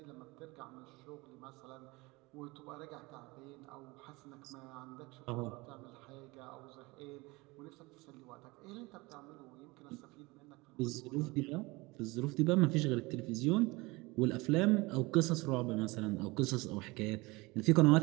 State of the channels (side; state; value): left; quieter; 23.5 dB